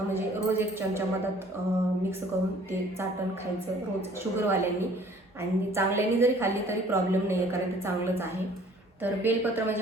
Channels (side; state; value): both; normal; correlation 0.54